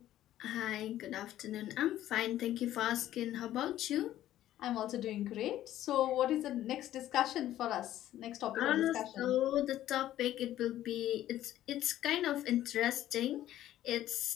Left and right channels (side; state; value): right; quieter; 13.1 dB